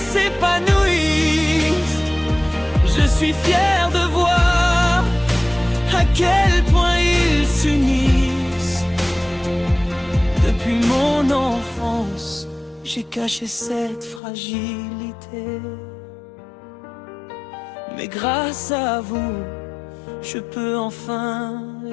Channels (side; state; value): right; drops out; at 14.2 s